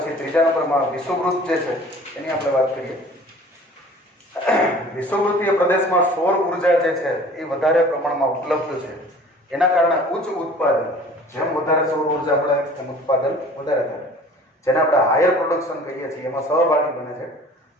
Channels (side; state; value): both; normal; correlation 0.47